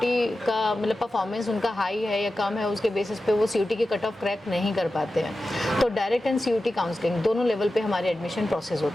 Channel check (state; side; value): normal; both; correlation 0.93